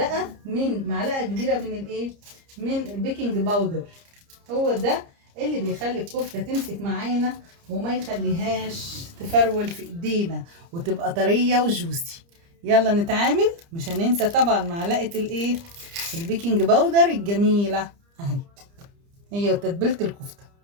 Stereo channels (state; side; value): late; left; 30 ms